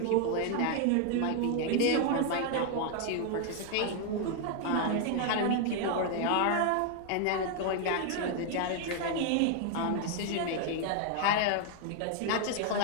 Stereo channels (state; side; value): different; both; correlation 0.00